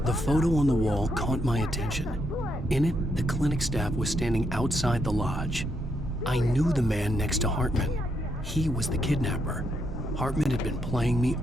The photo on the wall caught my attention. In it, the clinic staff was standing outside the lodge. I knew the man next to Hartman. He was the kidnapper. Hartman had been playing me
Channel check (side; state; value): both; normal; correlation 0.78